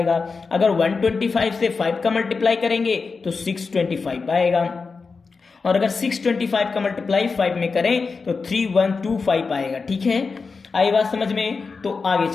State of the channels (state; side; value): quieter; right; 4.6 dB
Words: अगर 125 से 5 का मल्टीप्लाई करेंगे तो 625 आएगा, और अगर 625 का मल्टीप्लाई 5 में करें तो 3125 आएगा, ठीक है। आई बात समझ में? तो आगे